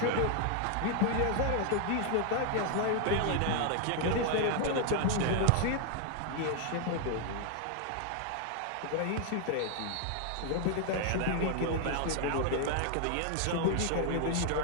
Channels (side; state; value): both; different; correlation 0.00